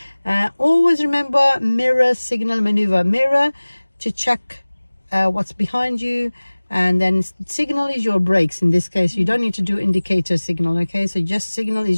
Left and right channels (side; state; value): both; inverted; correlation -1.00